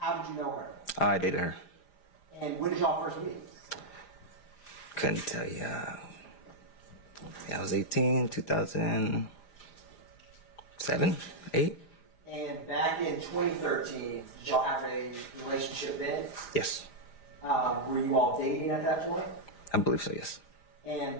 did you know her? I dated her. And when did y'all first meet? Couldn't tell you. I was 18, 2007, 8. And back in 2013, did y'all have a relationship then? Yes. Were you all dating at that point? I believe so, yes. And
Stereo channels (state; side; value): late; right; 4.9 ms